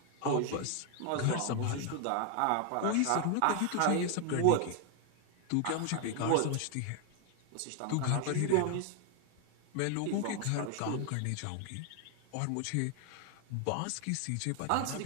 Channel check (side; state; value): both; different; correlation 0.00